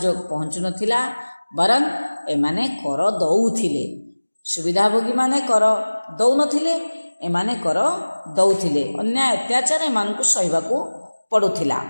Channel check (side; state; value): both; inverted; correlation -1.00